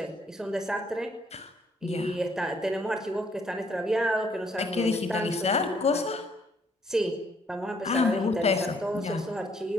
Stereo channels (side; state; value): both; normal; correlation 0.67